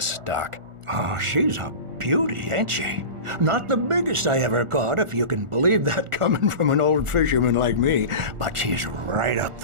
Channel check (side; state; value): left; late; 1.4 ms